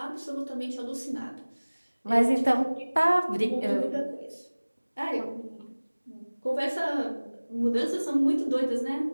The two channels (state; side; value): inverted; both; correlation -1.00